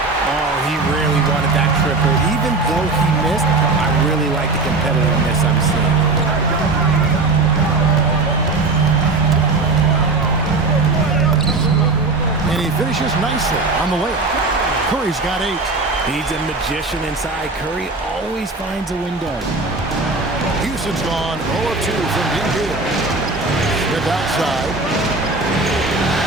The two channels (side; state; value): left; quieter; 3.5 dB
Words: Oh, he really wanted that triple. Even though he missed, I really like the competitiveness I'm seeing. And he finishes nicely on the layup. Curry's got 8. He's a magician inside. Curry always finds a window. Houston's gone 0 of 2 from deep here. Smith outside.